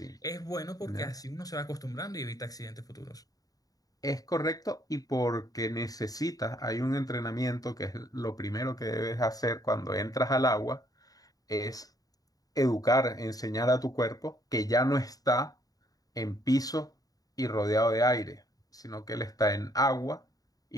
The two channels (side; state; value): right; late; 0.18 ms